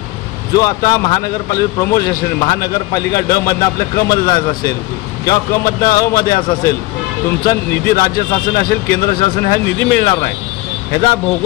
जो आता महानगरपालिका प्रमोशन असेल, महानगरपालिका ड मधनं आपल्या क मध्ये जायचं असेल किंवा क मधनं अ मध्ये असं असेल, तुमचा निधी राज्य शासन असेल, केंद्र शासन हा निधी मिळणार नाही. ह्याचा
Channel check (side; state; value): right; quieter; 19.5 dB